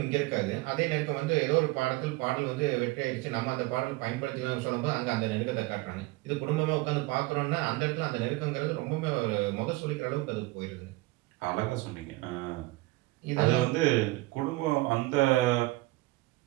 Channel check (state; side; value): quieter; left; 20.8 dB